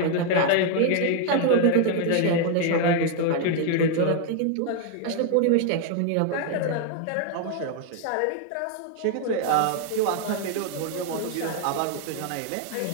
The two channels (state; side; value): different; both; correlation 0.00